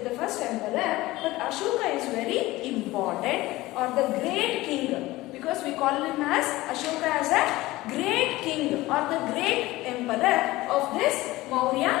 the first emperor, but Ashoka is very important or the great king because we call him as Ashoka as a great king or the great emperor of this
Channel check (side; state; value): right; quieter; 18.6 dB